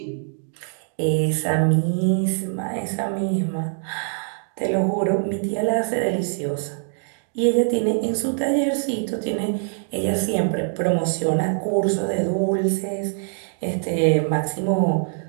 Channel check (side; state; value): left; silent; digital silence